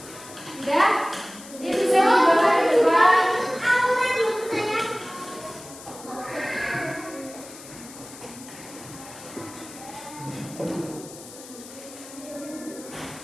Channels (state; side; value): noise; left; hiss, 16 dB below the sound